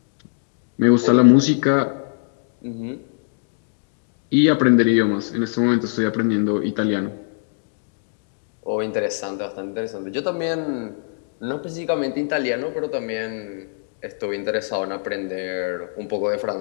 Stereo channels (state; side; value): silent; right; digital silence